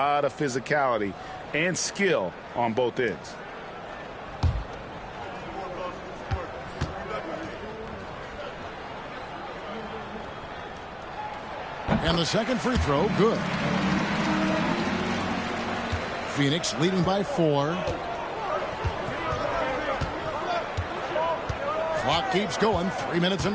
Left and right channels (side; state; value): both; identical; correlation 1.00